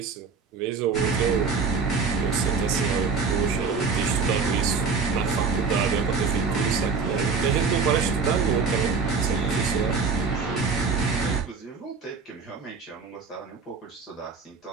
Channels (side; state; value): left; quieter; 5.0 dB